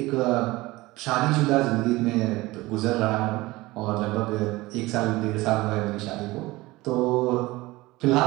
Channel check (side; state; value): left; quieter; 20.1 dB